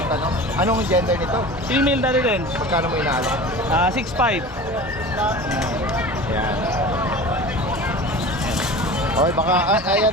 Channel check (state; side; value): normal; both; correlation 0.36